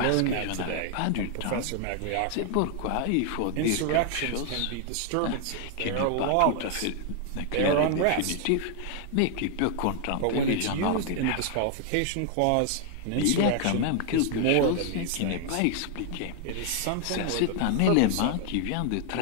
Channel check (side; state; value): both; different; correlation 0.00